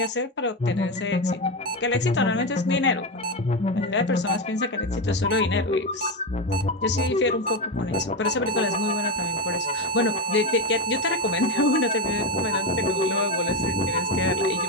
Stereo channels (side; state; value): both; normal; correlation 0.12